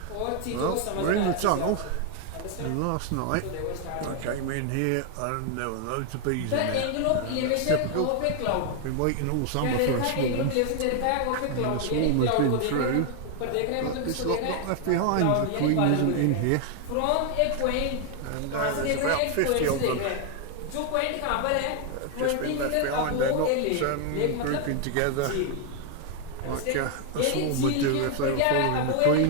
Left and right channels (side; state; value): both; different; correlation 0.00